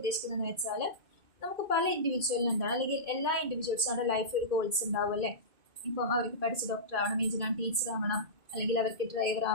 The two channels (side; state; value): left; late; 2.5 ms